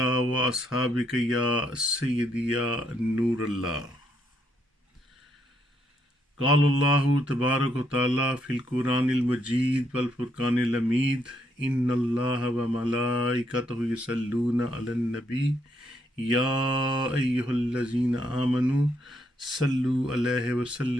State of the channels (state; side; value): normal; both; correlation 0.75